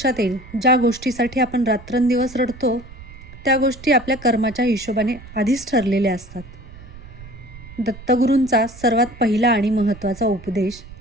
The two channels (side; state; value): right; noise; rumble, 17 dB below the sound